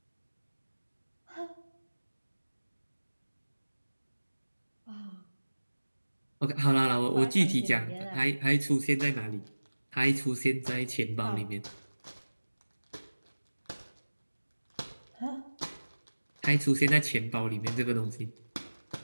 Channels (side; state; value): both; inverted; correlation -1.00